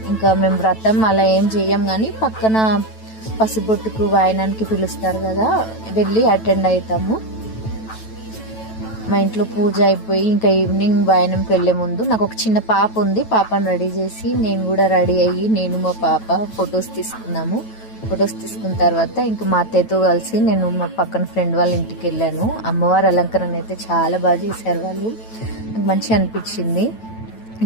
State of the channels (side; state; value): right; late; 9.1 ms